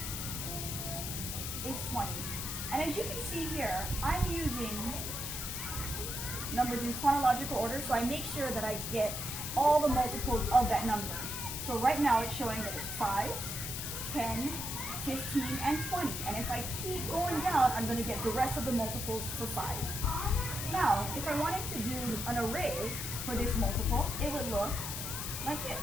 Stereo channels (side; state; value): left; noise; hiss, 4 dB below the sound